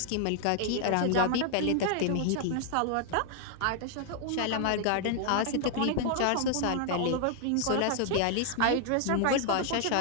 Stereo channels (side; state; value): both; different; correlation 0.00